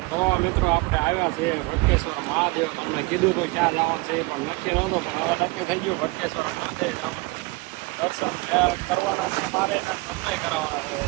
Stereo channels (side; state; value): left; quieter; 25.0 dB